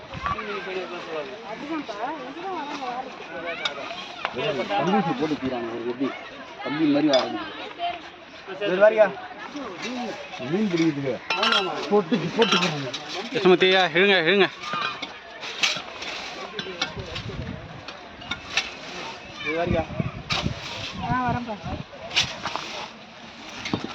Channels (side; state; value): both; identical; correlation 1.00